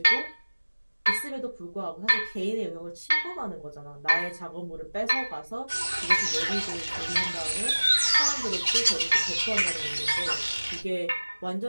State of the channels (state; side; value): inverted; both; correlation -1.00